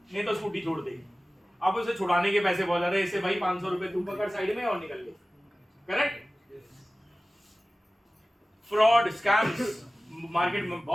नहीं तो स्कूटी छोड़ दे। अब उसे छुड़ाने के पैसे बहुत ज्यादा है, इससे भाई 500 रुपए तू पकड़ साइड में और निकल ले। करेक्ट? फ्रॉड, स्कैम्स, मार्केट में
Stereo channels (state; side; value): normal; both; correlation 0.96